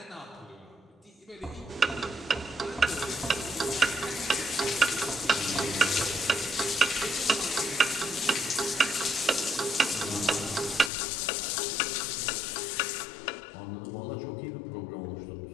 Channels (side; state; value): right; drops out; at 10.9 s